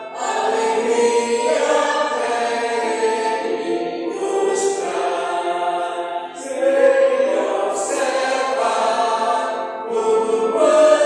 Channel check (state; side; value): identical; both; correlation 1.00